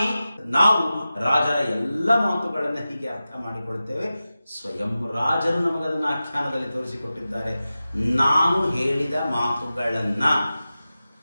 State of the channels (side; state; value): both; inverted; correlation -0.94